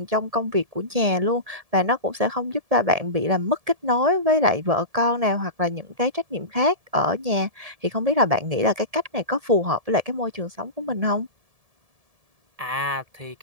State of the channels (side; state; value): left; late; 1.7 ms